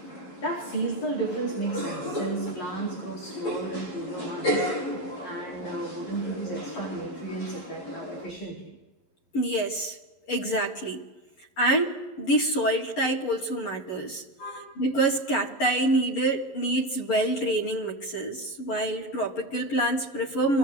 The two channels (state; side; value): late; right; 11 ms